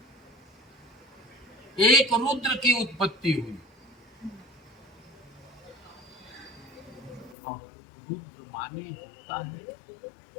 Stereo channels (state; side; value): drops out; right; at 7.4 s